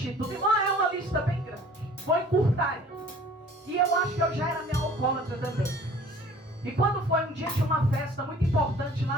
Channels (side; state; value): both; normal; correlation 0.50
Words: Irmão, é uma lista bem grande. Vou encurtar. E eu acho que eu já era meio alcoólatra também. E quando foi um dia de uma festa muito importante